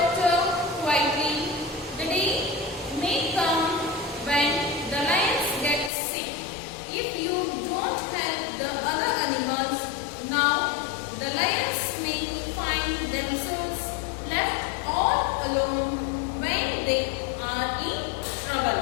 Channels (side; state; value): right; drops out; at 5.9 s